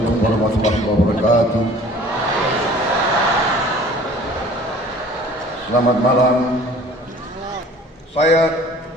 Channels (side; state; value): both; normal; correlation 0.49